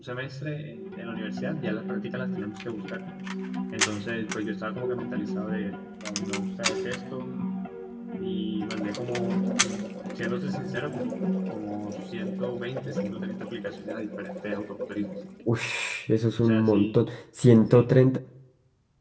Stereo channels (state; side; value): identical; both; correlation 1.00